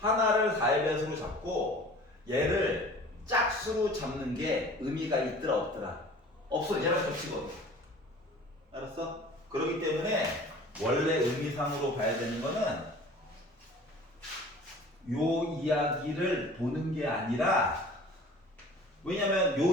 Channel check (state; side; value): normal; both; correlation 0.45